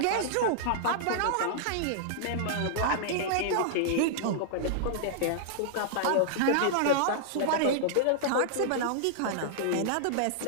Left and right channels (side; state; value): both; different; correlation -0.01